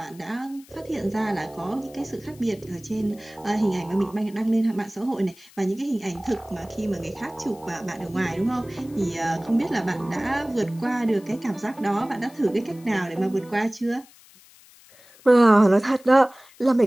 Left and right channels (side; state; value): left; noise; hiss, 25 dB below the sound